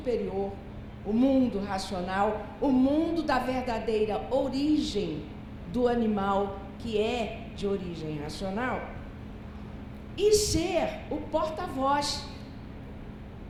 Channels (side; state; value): both; identical; correlation 1.00